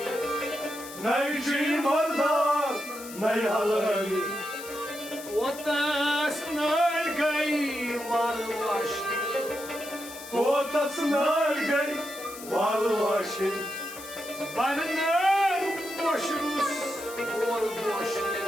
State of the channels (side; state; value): left; noise; hiss, 14 dB below the sound